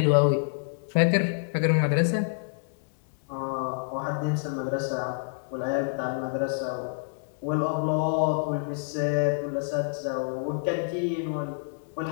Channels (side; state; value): right; silent; 60 dB below the other